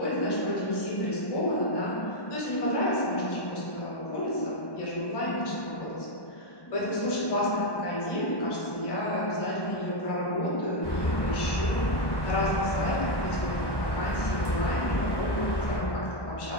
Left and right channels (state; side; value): late; right; 1.1 ms